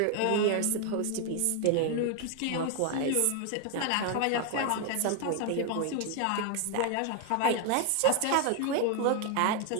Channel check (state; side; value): different; both; correlation 0.01